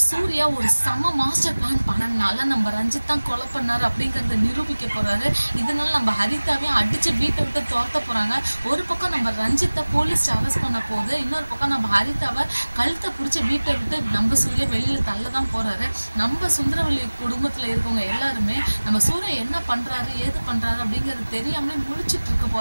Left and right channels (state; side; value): inverted; both; correlation -1.00